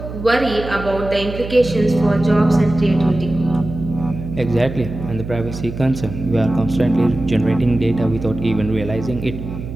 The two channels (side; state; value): right; noise; hum, 9 dB below the sound